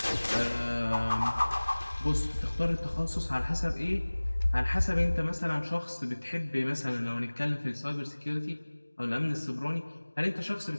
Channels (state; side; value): inverted; both; correlation -1.00